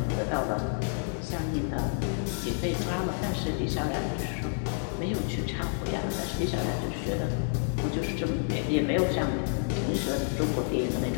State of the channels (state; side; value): silent; right; digital silence